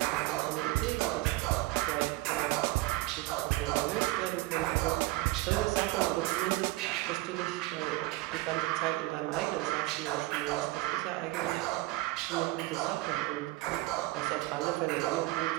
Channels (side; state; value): left; quieter; 19.7 dB